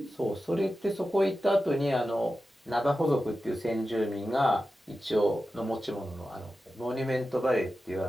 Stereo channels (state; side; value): normal; both; correlation 0.92